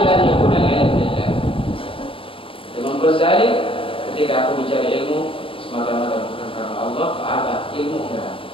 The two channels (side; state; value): right; late; 0.26 ms